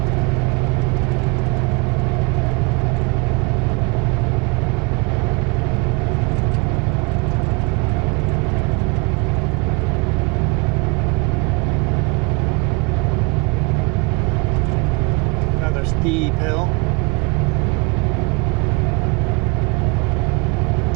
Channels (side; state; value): left; quieter; 28.0 dB